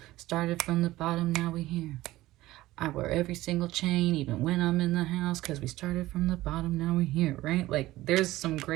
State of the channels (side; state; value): left; quieter; 16.9 dB